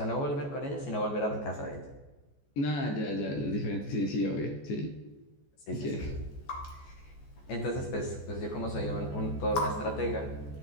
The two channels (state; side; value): late; right; 14 ms